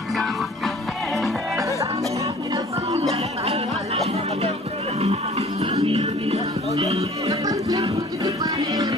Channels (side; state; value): both; normal; correlation 0.50